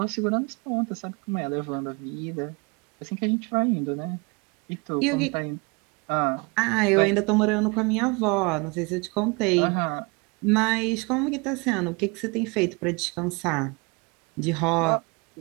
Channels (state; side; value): quieter; left; 29.1 dB